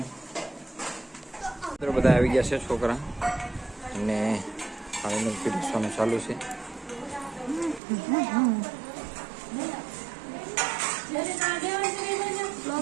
બધા આવી ગયા છે છોકરા, અને પાણીનું પીરસવાનું ચાલુ છે.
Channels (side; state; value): left; drops out; at 7.8 s